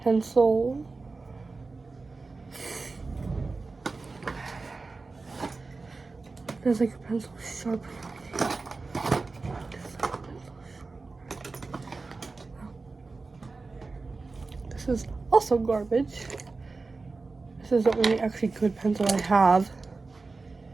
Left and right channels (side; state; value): left; quieter; 3.9 dB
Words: Pencil. There's like a pencil sharpener. This is also garbage. This is the only actually good pencil I have.